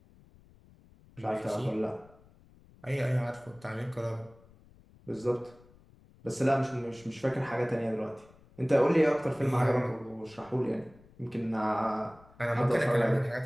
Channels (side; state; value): left; noise; rumble, 26 dB below the sound